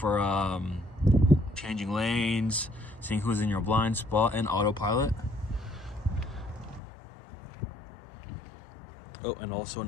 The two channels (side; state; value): right; drops out; at 6.8 s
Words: changing lanes, seeing who's in your blind spot, and autopilot. Oh, and also